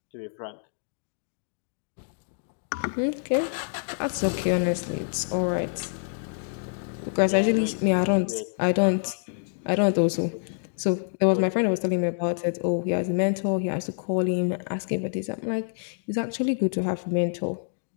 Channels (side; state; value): right; silent; digital silence